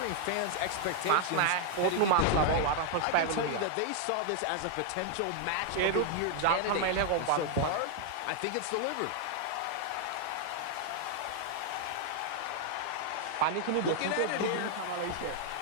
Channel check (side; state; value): both; different; correlation 0.00